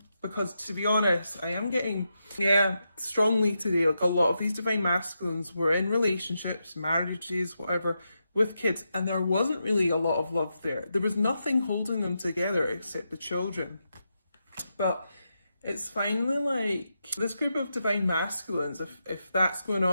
Because to be honest, I am getting, yeah, strongly today, like a lot of these divine masculines were in relationships, marriages, whatever, with kids, and there wasn't really a lot of love there. There was nothing holding them together except the children. But it's finally like this group of divine masculines, if that's going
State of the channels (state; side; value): inverted; both; correlation -0.86